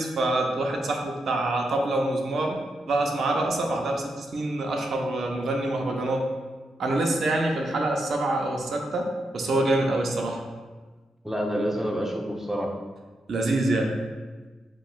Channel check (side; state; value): both; normal; correlation 0.83